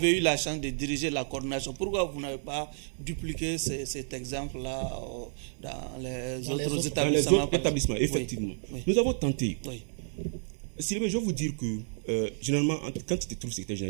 eu la chance de diriger la coordination, pourquoi vous n'avez pas dupliqué cet exemple-là dans les autres établissements? Dans les autres établissements, effectivement. Oui. Nous avons tenté. Oui. Sylvain, je vais vous dire que, généralement, quand tu te trouves secrétaire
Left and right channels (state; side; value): silent; left; 57 dB below the other